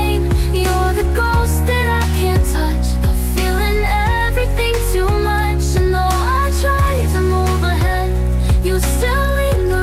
You're the ghost that I can't touch, but feeling everything too much. And though I try to move ahead, you still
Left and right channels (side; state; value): both; identical; correlation 1.00